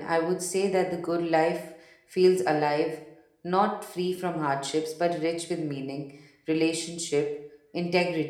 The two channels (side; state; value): both; identical; correlation 1.00